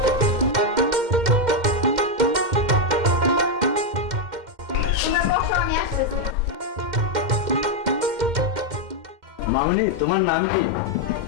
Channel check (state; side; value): late; left; 2.1 ms